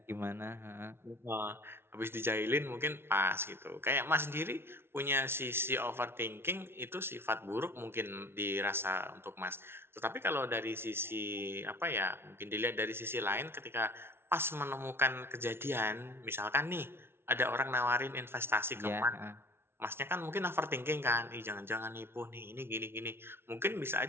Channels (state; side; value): late; left; 0.12 ms